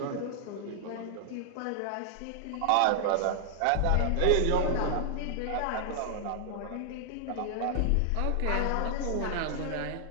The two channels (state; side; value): different; both; correlation 0.00